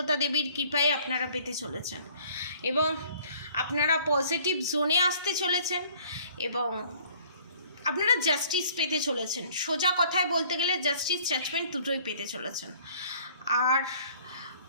দেবীর কৃপায় আপনারা পেতে চলেছেন এবং আপনারা পজিটিভ জোনে আসতে চলেছেন এবং আপনারা জাস্টিস পেতে চলেছেন। সোজা কথায় বলতে গেলে জাস্টিস, জাজমেন্ট দুটোই পেতে চলেছেন। আর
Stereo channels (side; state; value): both; inverted; correlation -0.56